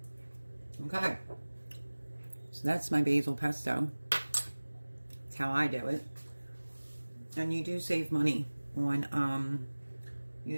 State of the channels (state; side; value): inverted; both; correlation -1.00